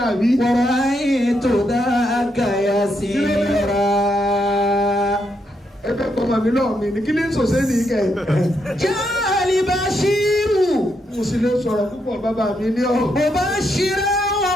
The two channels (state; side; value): normal; both; correlation 0.79